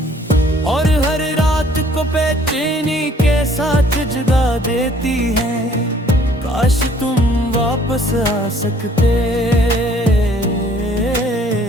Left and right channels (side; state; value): both; normal; correlation 0.58